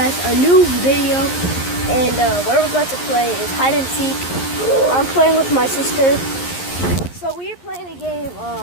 a new video. And what we're about to play is hide and seek. I'm playing with my sister. So we are playing a game.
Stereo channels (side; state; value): right; late; 11 ms